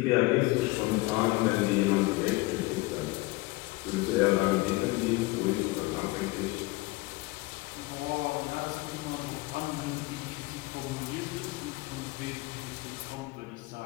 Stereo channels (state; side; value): quieter; right; 22.1 dB